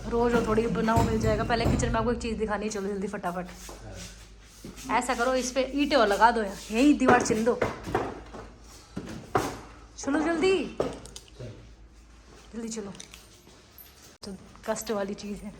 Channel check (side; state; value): both; identical; correlation 1.00